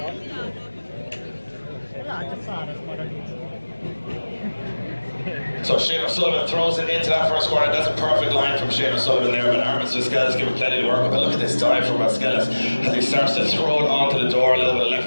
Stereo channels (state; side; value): inverted; both; correlation -1.00